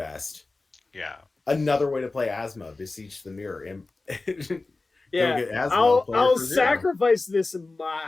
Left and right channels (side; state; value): right; quieter; 3.4 dB